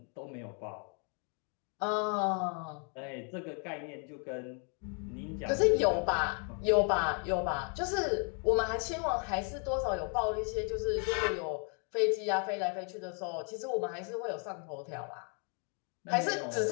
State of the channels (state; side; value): quieter; right; 39.5 dB